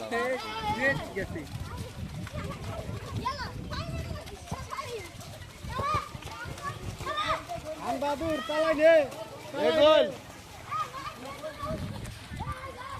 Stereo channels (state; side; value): identical; both; correlation 1.00